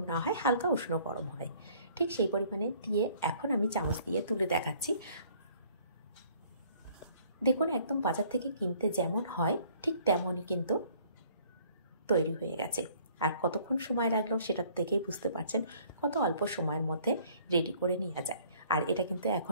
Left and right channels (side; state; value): both; inverted; correlation -0.58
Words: না হয়, হালকা উষ্ণ গরম হয়, ঠিক সেই পরিমাণে দিয়ে এখন আমি চামচ দিয়ে তুলে দেখাচ্ছি। দেখুন একদম বাজার থেকে কিনতে যেমন হয় ঠিক তেমনই কিন্তু তৈরি হয়ে গেছে। আর কতক্ষণ সময় লাগলো সেটা দেখেই বুঝতে পারছেন কত অল্প সময়ের মধ্যে রেডি করে নেওয়া যায়। আর এটা কিন্তু